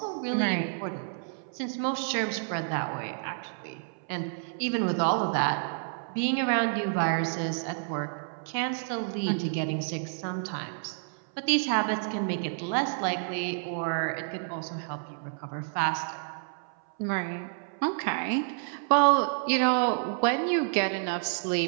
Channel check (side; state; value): left; silent; 58 dB below the other